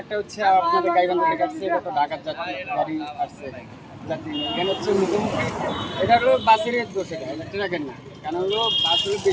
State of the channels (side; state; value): both; identical; correlation 1.00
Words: হচ্ছে আপনাদের গাইবান্ধা থেকে আসছে, এটা তো ঢাকার গাড়ি আসছে যাত্রী এখানে হচ্ছে মুখোমুখি এটা হলো বাসের দোষ, এটা ট্রাকের না, কারণ হলো বাস হলো